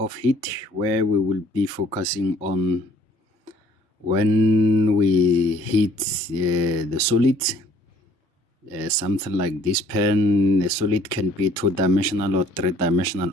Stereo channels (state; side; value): normal; both; correlation 0.57